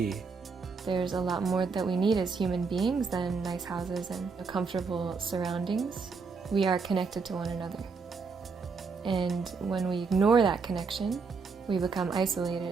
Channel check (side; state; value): left; quieter; 4.9 dB